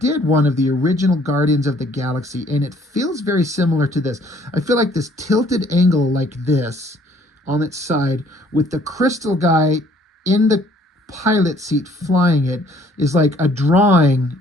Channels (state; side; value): normal; both; correlation 0.60